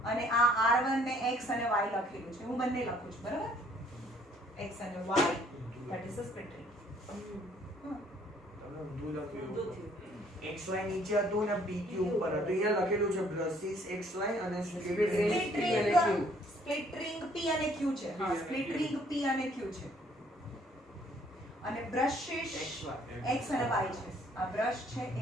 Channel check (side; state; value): both; normal; correlation 0.62